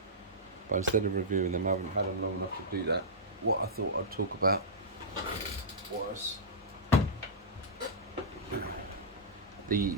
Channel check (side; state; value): both; normal; correlation -0.14